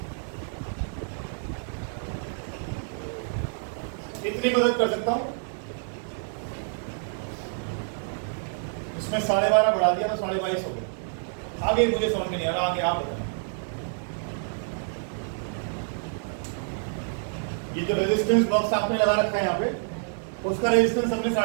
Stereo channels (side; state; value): left; silent; digital silence